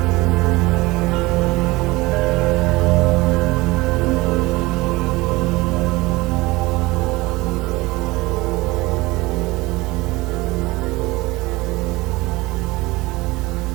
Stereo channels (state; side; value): quieter; left; 21.3 dB